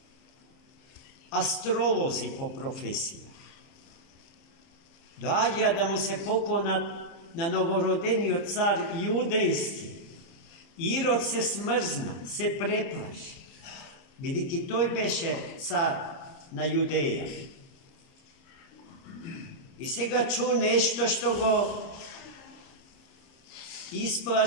astrolozi po profesiji. Dođa da mu se poklona na novorodenio car judejski. Irod se smrzna, se preplaši. Vidiki, toj beše car na Judeja. I сега ču nešto što go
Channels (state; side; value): late; right; 30 ms